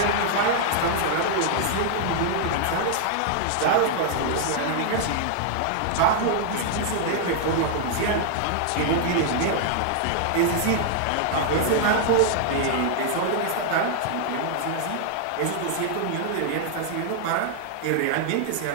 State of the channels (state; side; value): different; both; correlation 0.00